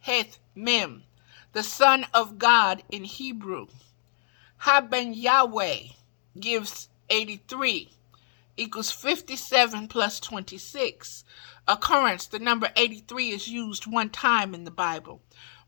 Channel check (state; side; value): silent; right; digital silence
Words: heth mem. The Son of God in Hebrew. Haben Yahweh gives 83. Equals 57 plus 26. Occurrence, the number 83 is used one time in the Bible.